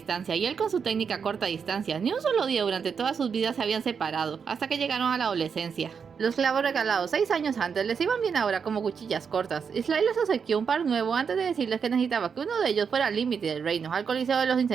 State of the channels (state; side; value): quieter; left; 6.4 dB